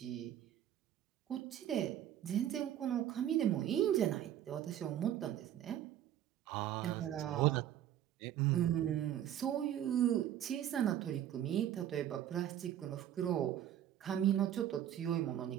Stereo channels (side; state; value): left; quieter; 11.2 dB